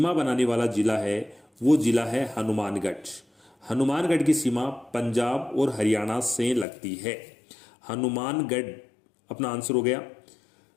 बनाने वाला जिला है, वो जिला है हनुमानगढ़। हनुमानगढ़ की सीमा पंजाब और हरियाणा से लगती है। हनुमानगढ़ अपना आंसर हो गया।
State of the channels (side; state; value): right; drops out; at 6.7 s